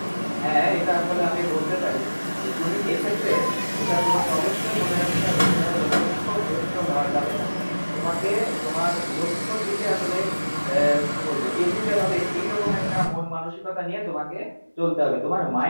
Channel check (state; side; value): inverted; both; correlation -1.00